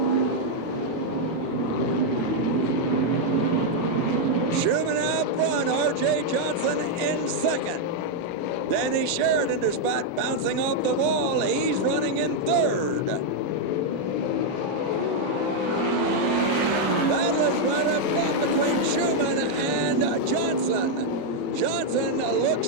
Schumann out front, R.J. Johnson in second. Danny Sheridan, despite bouncing off the wall, he's running in third. Battle is right up front between Schumann and Johnson. Johnson looks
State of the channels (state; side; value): late; right; 13 ms